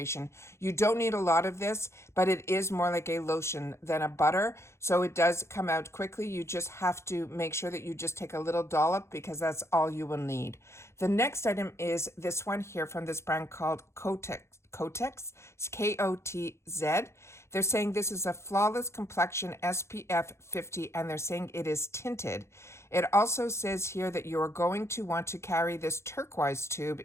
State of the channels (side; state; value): right; late; 0.13 ms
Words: You don't need a lot of this, but it is more like a lotion than a butter, so it does come out quickly. You just have to make sure that you just take a little dollop, because that's all you will need. The next item is this one here from this brand called Kotex, it's Kotz. They're saying this is a flawless complexion SPF 50, and they're saying it is tinted. It also says here that you are going to want to carry this turquoise tube